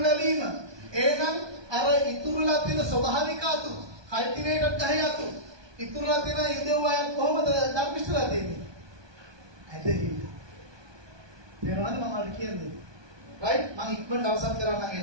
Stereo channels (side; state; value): left; late; 1.2 ms